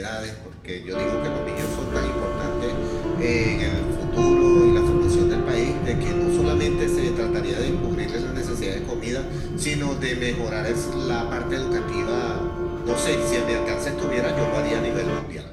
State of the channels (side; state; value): both; identical; correlation 1.00